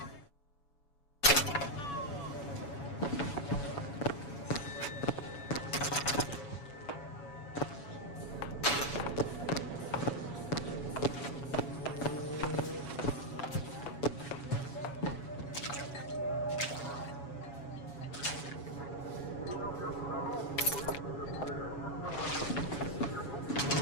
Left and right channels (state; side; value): late; right; 7.0 ms